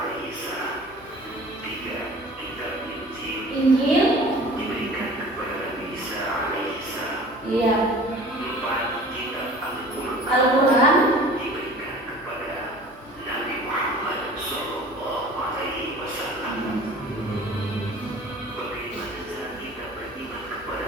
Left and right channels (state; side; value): normal; both; correlation 0.45